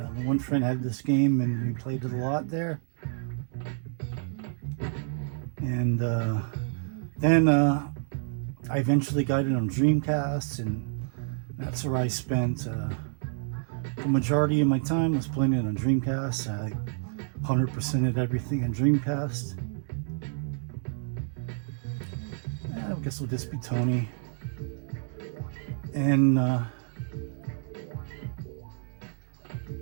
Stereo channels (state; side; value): silent; left; digital silence